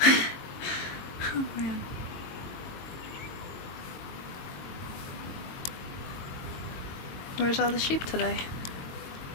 Oh man. Where's all the sheep today?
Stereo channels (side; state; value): right; late; 22 ms